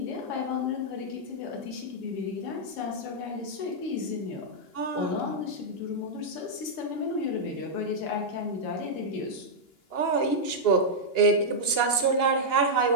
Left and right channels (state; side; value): late; right; 2.9 ms